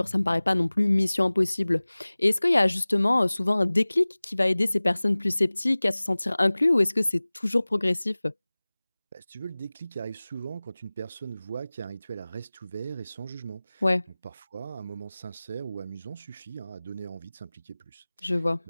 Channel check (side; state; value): both; inverted; correlation -0.99